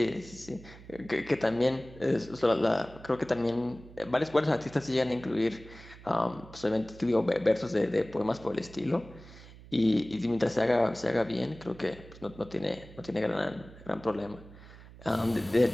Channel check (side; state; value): right; noise; hum, 19 dB below the sound